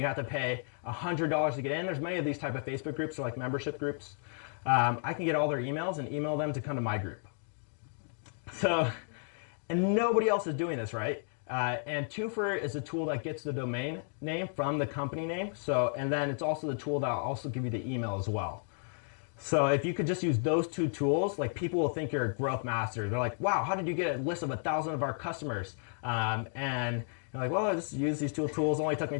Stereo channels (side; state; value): right; silent; 56 dB below the other